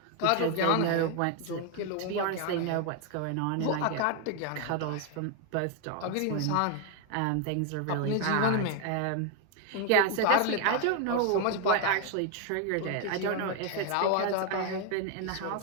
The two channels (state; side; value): different; both; correlation 0.01